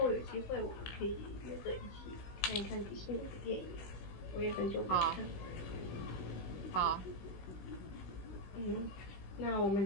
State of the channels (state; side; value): late; right; 16 ms